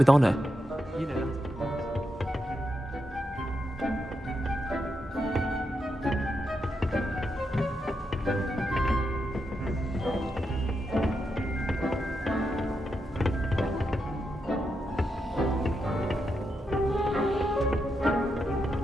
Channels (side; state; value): both; normal; correlation 0.84